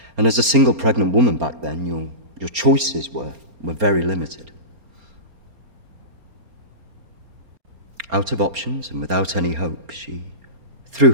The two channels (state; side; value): late; left; 4.3 ms